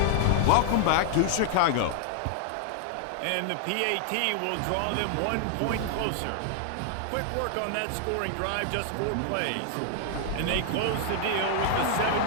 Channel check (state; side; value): different; both; correlation 0.00